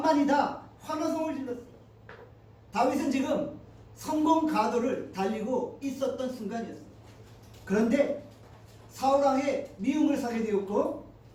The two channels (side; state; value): both; identical; correlation 1.00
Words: 환호성을 질렀어요. 다윗은 지금 성공 가도를 달리고 있었던 순간이었어요. 그런데 사울왕의 미움을 사게 되었고